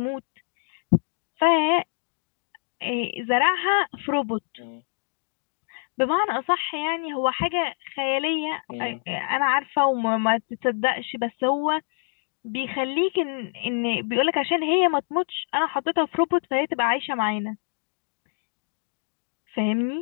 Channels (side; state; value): right; silent; digital silence